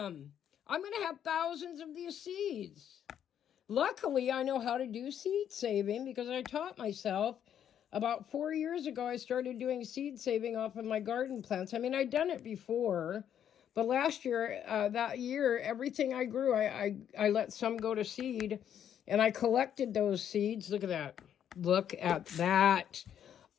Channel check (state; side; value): quieter; right; 9.5 dB